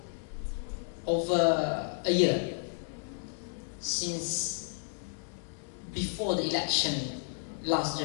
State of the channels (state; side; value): silent; right; digital silence